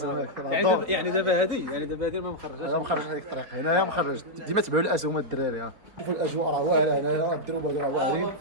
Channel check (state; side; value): late; left; 4.4 ms